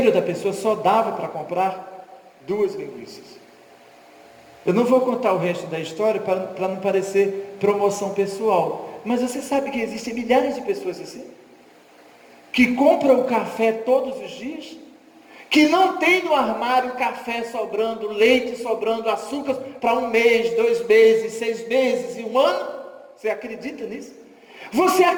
da pessoa só dava para comprar 2 linguiças. Eu não vou contar o resto da história para não parecer promoção pessoal. Mas você sabe que existem milhares de pessoas assim? Que compram o café todos os dias? que não tem no armário café sobrando, leite sobrando, açúcar para 1 mês, 2 meses, 6 meses e 1 ano? Você acredita nisso? Você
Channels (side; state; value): both; identical; correlation 1.00